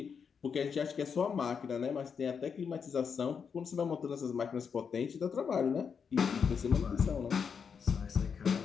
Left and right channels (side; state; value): right; quieter; 6.5 dB